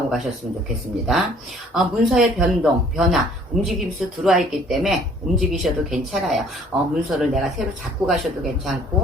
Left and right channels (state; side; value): normal; both; correlation 0.56